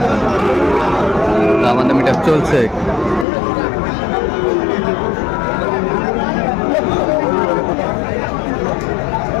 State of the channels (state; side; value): drops out; right; at 3.2 s